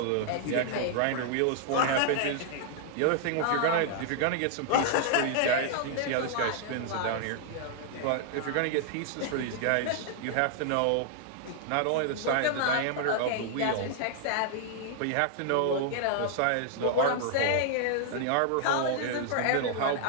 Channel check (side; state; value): both; different; correlation -0.01